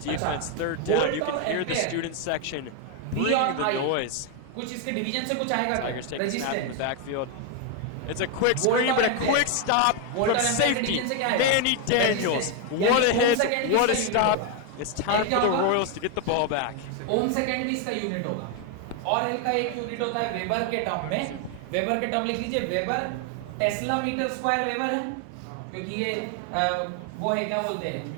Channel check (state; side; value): different; both; correlation 0.01